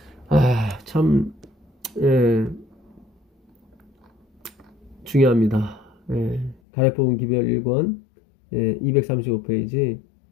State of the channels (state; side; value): drops out; right; at 6.6 s